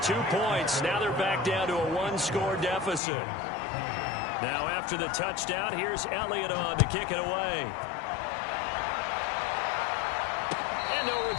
points, now they're back down to a 1-score deficit. Now after the touchdown, here's Elliott on to kick it away. And no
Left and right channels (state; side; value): drops out; right; at 3.0 s